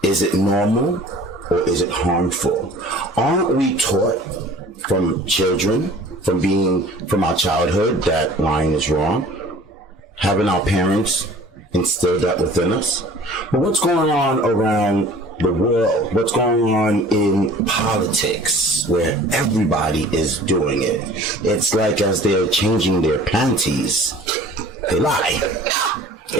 Is it normal, or is it harmful? Aren't we taught from children, from our childhood, that lying is wrong? Haven't our parents instilled that within us? But what's going on around the world? What's going on in politics, where everybody is doing it? It's like as they're changing their panties, they lie.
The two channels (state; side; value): normal; both; correlation 0.48